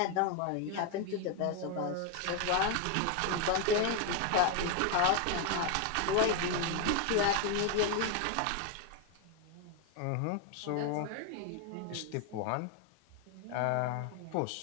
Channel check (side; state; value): both; different; correlation 0.01